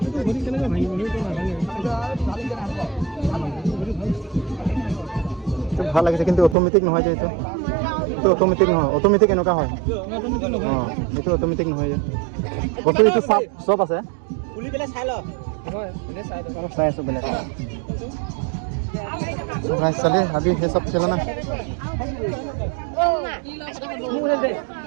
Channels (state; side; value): drops out; left; at 6.6 s